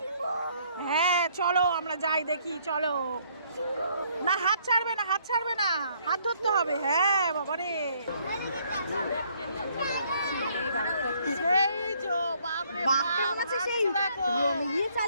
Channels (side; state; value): both; inverted; correlation -0.66